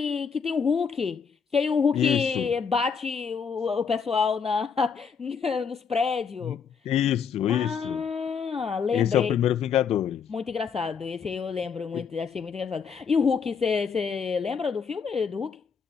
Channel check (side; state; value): right; quieter; 6.3 dB